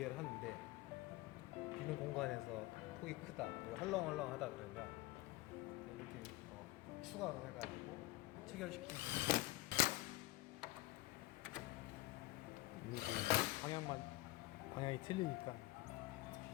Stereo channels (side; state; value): right; quieter; 19.1 dB